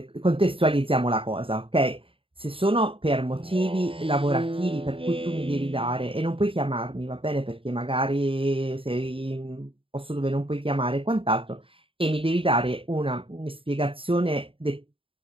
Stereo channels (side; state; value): left; late; 0.26 ms